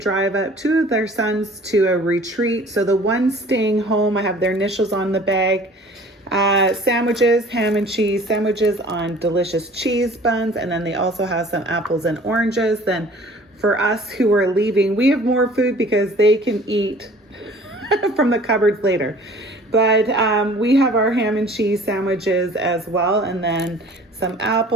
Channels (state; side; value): normal; both; correlation 0.49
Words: up 2 of their sons to a retreat. So the one staying home, I have their initials on the bag. Sandwiches, ham and cheese sandwiches on delicious cheese buns. And then they also have some apples and oranges. Then for us who are leaving, we have more food because they can eat from the cupboards later. But we have our ham and cheese sandwiches as well, and then some